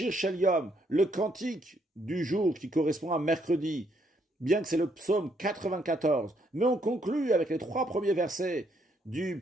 Shel Yom, le cantique du jour qui correspond à mercredi, bien que c'est le psaume 94, mais on conclut avec les 3 premiers versets du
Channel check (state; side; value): normal; both; correlation 0.72